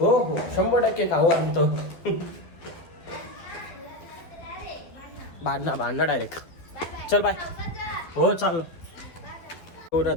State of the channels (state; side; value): late; right; 12 ms